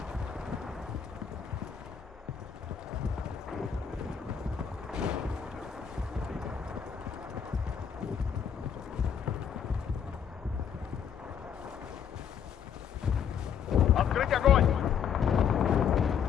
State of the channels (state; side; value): quieter; right; 7.9 dB